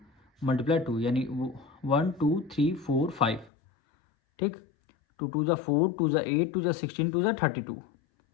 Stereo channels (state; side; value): drops out; right; at 3.5 s